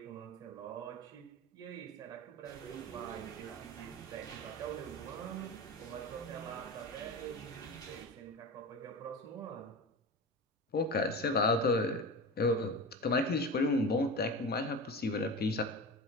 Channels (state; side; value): normal; both; correlation 0.29